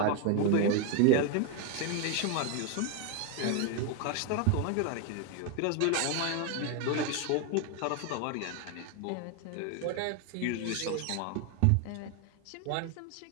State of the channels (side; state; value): both; different; correlation 0.01